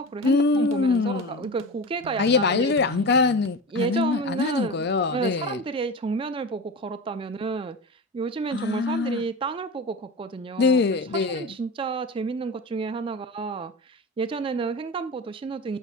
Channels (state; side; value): normal; both; correlation 0.27